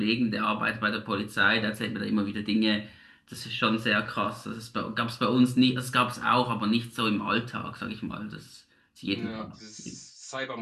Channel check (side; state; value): both; identical; correlation 1.00